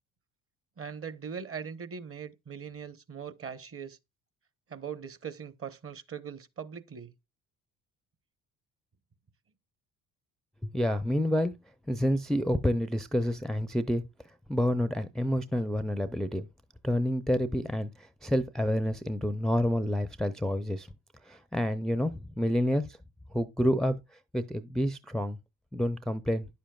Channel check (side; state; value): both; normal; correlation 0.91